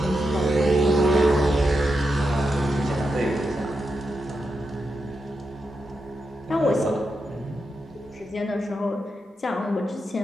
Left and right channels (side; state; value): both; normal; correlation 0.86